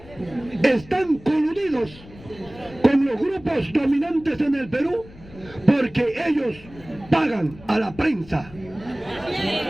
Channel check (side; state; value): left; noise; rumble, 20 dB below the sound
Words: Están coludidos con los grupos dominantes en el Perú porque ellos pagan a la prensa.